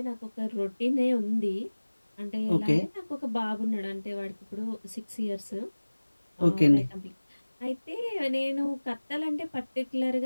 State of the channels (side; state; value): both; inverted; correlation -1.00